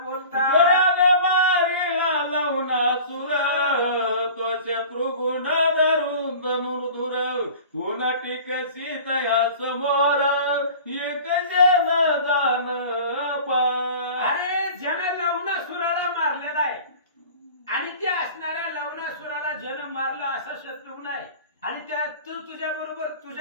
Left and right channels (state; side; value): inverted; both; correlation -0.41